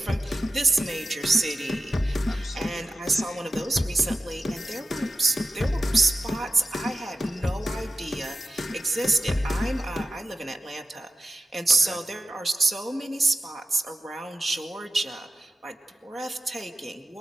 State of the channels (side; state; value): both; normal; correlation 0.92